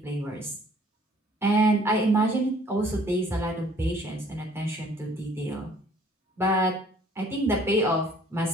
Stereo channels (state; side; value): normal; both; correlation 0.57